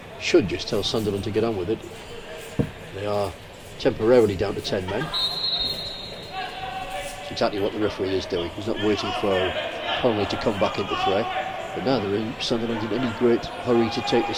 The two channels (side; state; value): both; identical; correlation 1.00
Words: should just tell Sunderland to get on with it. They are temporarily down to 10 men. It's exactly what the referee is doing. He's not waiting for Connolly to come back into fray. But neither is Sunderland in any great hurry to take